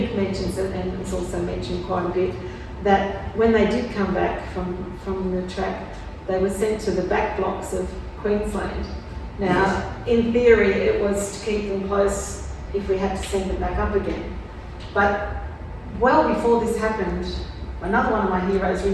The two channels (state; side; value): identical; both; correlation 1.00